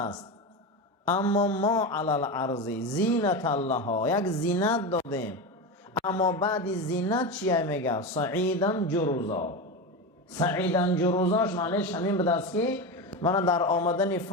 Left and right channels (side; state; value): both; normal; correlation 0.19